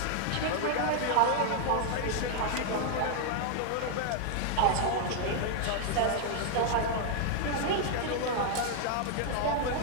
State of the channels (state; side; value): different; both; correlation 0.00